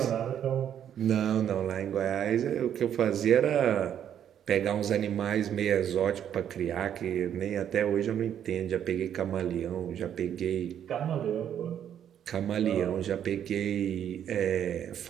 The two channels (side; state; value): left; quieter; 9.6 dB